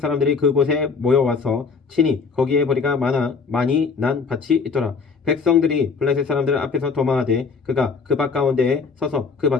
사람들이 그곳에 모여와서 친히 거기에 보리가 많이 난 밭이 있더라. 백성들이 블레셋 사람들 앞에서 도망하되 그가 그 밭 가운데에 서서 그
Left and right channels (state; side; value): quieter; right; 5.1 dB